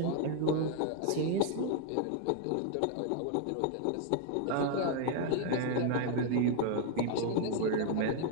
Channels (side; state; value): both; different; correlation 0.00